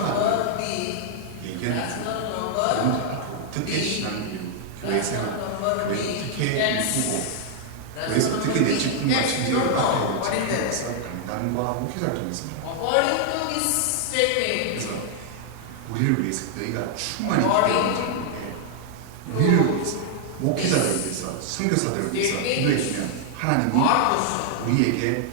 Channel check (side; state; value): both; different; correlation 0.00